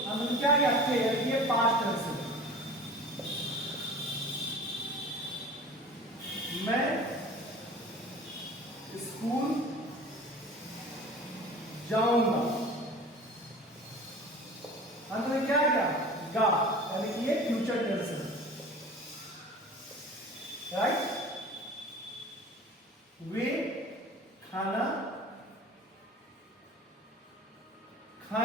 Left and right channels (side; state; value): both; normal; correlation 0.40